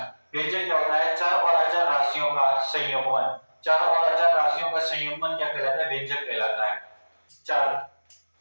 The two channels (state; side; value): inverted; both; correlation -1.00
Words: व्यंजक क्या होता है? चर और अचर राशियों का संयोगन। चर और अचर राशियों का संयोगन क्या कहलाता है? व्यंजक कहलाता है। चर